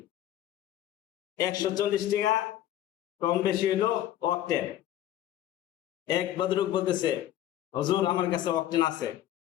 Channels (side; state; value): right; quieter; 12.6 dB